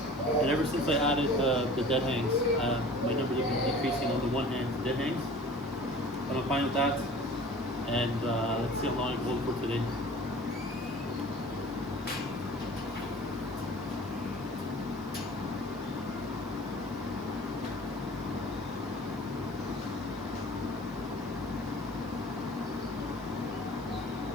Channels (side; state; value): right; noise; hiss, 25 dB below the sound